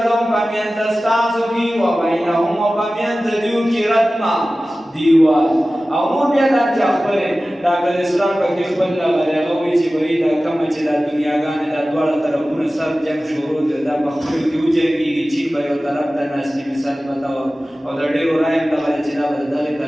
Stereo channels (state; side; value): normal; both; correlation 0.96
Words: پمیند ستاسو کې او بینهم او پمیند دیو کې رتما دیوال او نور بیا دا چې خپلې ډاکټر اسلام پکې خپل لغلی هغه وایي چې وایي دا کومه چې دا دنیاګانې دا دواړه طرفونه سر جنګ شروع دی دا په خپلو کې وجنګېږي چین به یو طرف ته ناست دي مثال پته او د ډېرو رایې هم دغه چې دا به د دغې